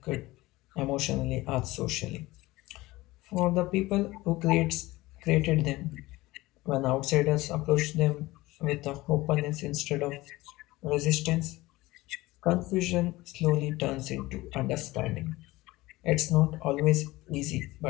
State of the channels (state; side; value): quieter; right; 19.4 dB